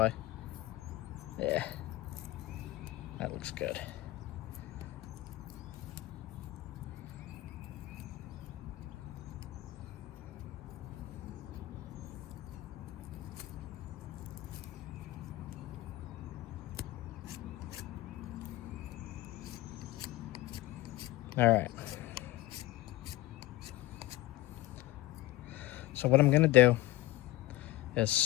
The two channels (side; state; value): right; quieter; 17.1 dB